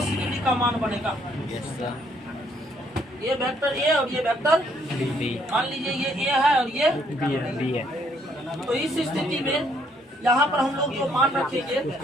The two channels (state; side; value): normal; both; correlation 0.68